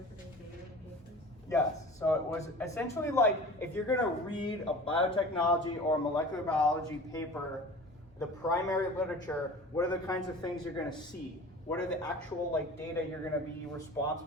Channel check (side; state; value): both; normal; correlation 0.39